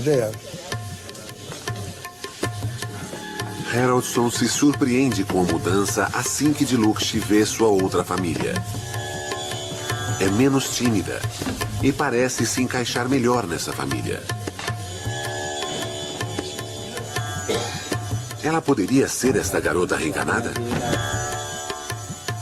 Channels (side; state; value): both; identical; correlation 1.00